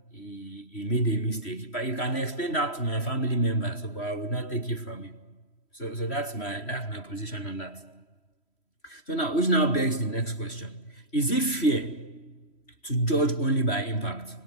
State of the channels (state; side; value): late; right; 3.1 ms